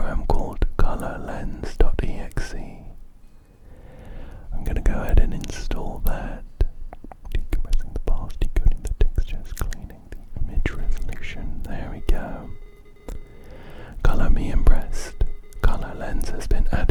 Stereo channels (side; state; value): both; identical; correlation 1.00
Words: called colorlens.exe. I'm gonna go ahead and install that. Decompressing the files, decoding the textures, cleaning the image resolution. There we go. Color me impressed. Color Lens has been